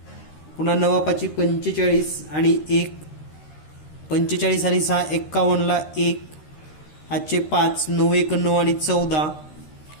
पुन्हा 9 5 45 आणि 1, 45 आणि 6 51 ला 1 हातचे 5, 9 1 9 आणि 14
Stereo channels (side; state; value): right; late; 13 ms